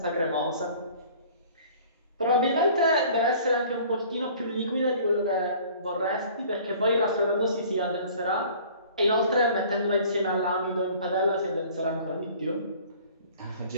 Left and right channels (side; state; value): both; inverted; correlation -0.49